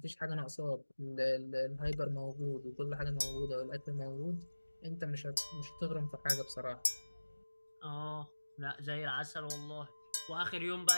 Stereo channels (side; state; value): both; inverted; correlation -1.00